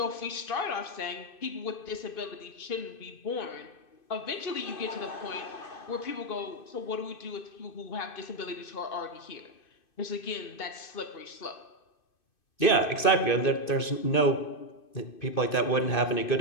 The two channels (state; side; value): late; right; 2.6 ms